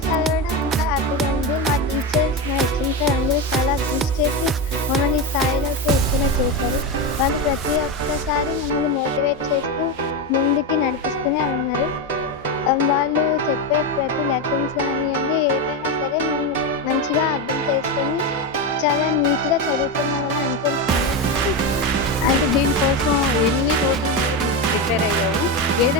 చదవడం ఇంకా హ్యాపీగా ఉంది. మా టీచర్స్, మా హెచ్ఎం సార్ అందరూ చాలా కృషి చేసి మమ్మల్ని ఈ స్థాయిలోకి వచ్చేలా చేశారు. వాళ్ళు ప్రతి ఒక్కసారి మమ్మల్ని మోటివేట్ చేస్తూ ముందుకి నడిపిస్తూనే ఉన్నారు. వాళ్ళు చెప్పే ప్రతి లెసన్స్ కానియ్యండి, ఏవైనా సరే మేము మంచిగా అర్థం చేసుకొని చాలా నీట్‌గా చదువుతున్నామని అనుకుంటున్నాను. అంటే దీనికోసం ఎన్ని రోజులు నువ్వు ప్రిపేర్ అయ్యావు?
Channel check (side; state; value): both; normal; correlation 0.14